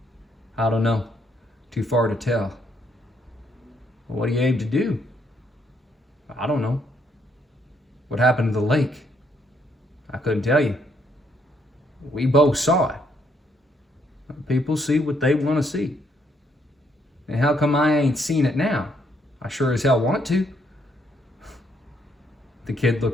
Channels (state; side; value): normal; both; correlation 0.72